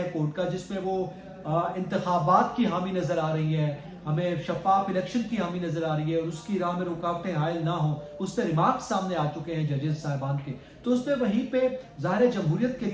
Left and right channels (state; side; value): identical; both; correlation 1.00